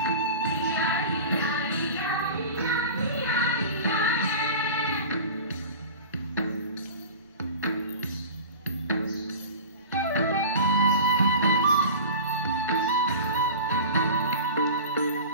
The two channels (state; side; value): inverted; both; correlation -0.35